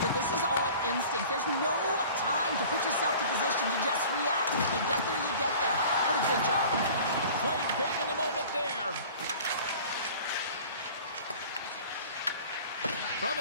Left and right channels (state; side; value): inverted; both; correlation -0.44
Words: this is all instinct. There's no time to put yourself to position to just react. If you get there, you get there. What a good job. Played big in the moment there. From